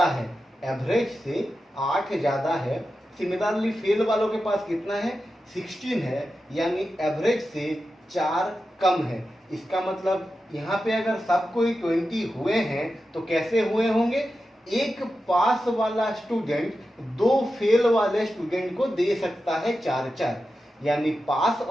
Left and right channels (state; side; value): normal; both; correlation 0.91